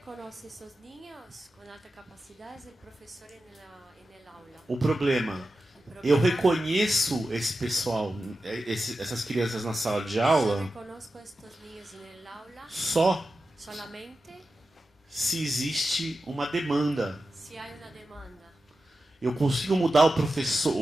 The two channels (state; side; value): normal; both; correlation 0.92